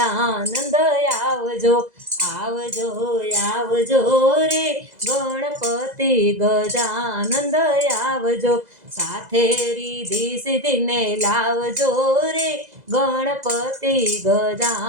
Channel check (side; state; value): left; late; 2.0 ms